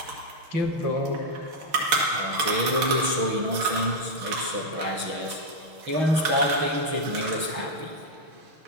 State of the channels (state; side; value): late; left; 6.4 ms